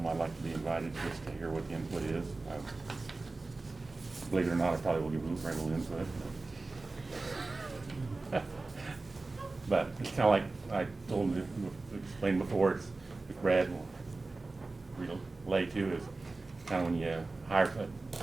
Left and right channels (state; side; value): quieter; left; 3.4 dB